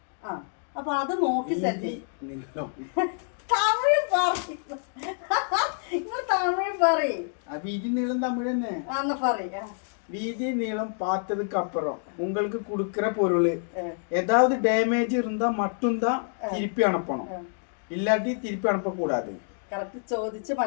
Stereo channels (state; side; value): silent; right; 60 dB below the other